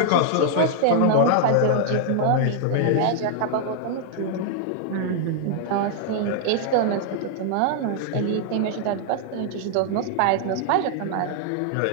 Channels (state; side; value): different; both; correlation 0.00